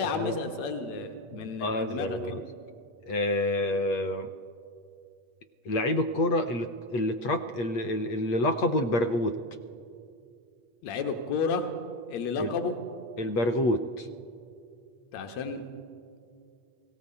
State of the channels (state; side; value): late; right; 8.5 ms